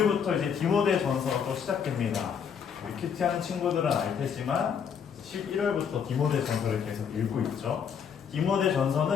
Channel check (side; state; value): right; quieter; 7.2 dB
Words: 이제 디모데전서가 또 시작됩니다. 우리 큐티하는 친구들은 알 테지만 11월부터 디모데전서를 계속 읽고 있죠.